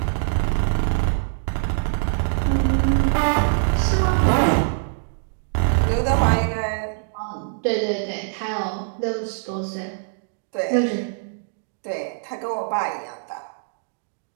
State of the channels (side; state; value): left; silent; digital silence